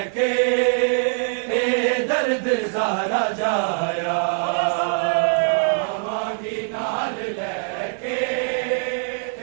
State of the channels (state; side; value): silent; left; 62 dB below the other